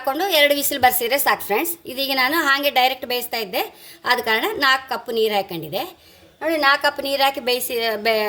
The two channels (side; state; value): both; identical; correlation 1.00